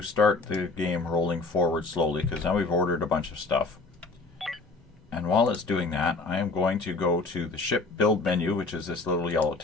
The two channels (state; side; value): quieter; right; 3.6 dB